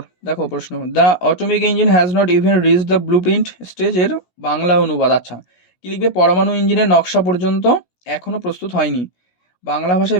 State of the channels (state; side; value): late; right; 17 ms